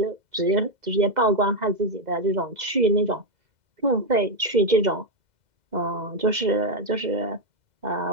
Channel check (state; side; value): late; left; 2.0 ms